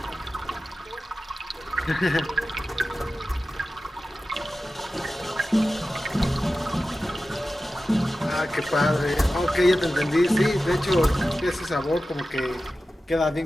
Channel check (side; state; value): both; normal; correlation 0.94